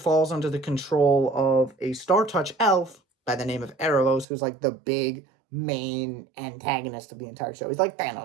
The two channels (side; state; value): left; drops out; at 4.2 s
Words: under the control of a Star Touch elf by the name of Erebos, who's like the big main antagonist of the entire show. He's like